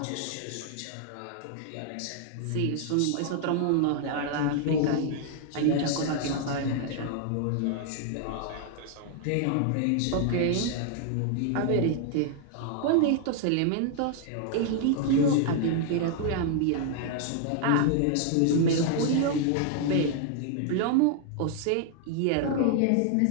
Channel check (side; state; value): both; different; correlation 0.00